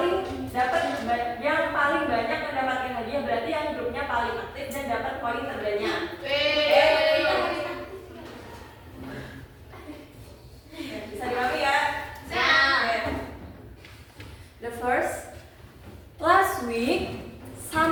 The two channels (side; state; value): both; identical; correlation 1.00